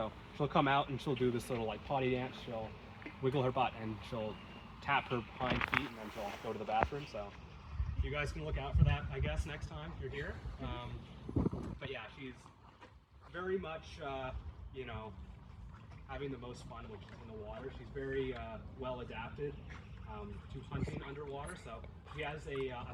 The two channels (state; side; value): identical; both; correlation 1.00